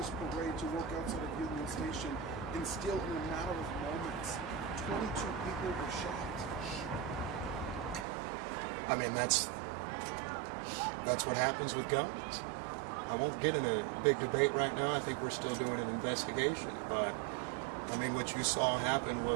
parade, to work outside of Union Station, and still in a matter of moments, 22 people were shot. I mean, that's what happens with guns. I won't get in a big debate right now. I think we're still doing an investigation, but I mean, what you saw happen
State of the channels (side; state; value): left; drops out; at 8.1 s